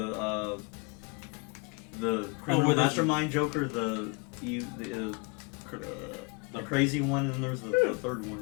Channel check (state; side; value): quieter; right; 31.6 dB